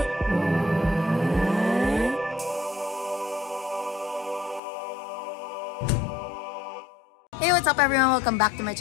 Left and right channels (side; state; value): right; drops out; at 4.6 s